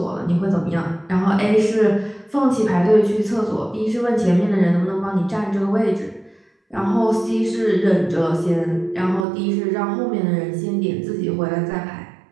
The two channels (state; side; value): drops out; left; at 9.2 s